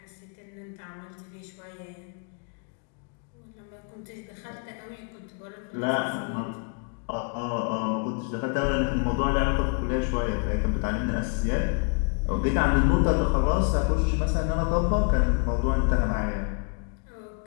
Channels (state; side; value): quieter; right; 38.4 dB